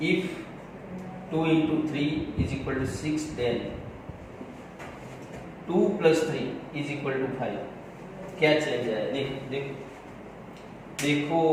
if 2 into 3 is equal to 6 then 2 plus 3 is equal to 5, क्या चेंज आया, देखो देखो देखो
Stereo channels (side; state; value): both; identical; correlation 1.00